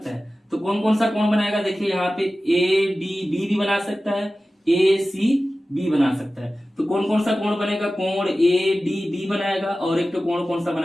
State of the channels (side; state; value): both; normal; correlation 0.95